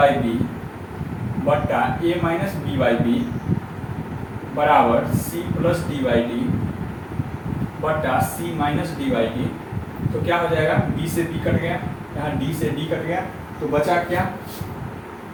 B बट्टा A minus B by B बराबर C plus D by D बट्टा C minus D by D. तो क्या हो जाएगा? बी से बी कट गया, यहाँ डी से डी कट गया, तो बचा क्या?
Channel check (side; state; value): both; identical; correlation 1.00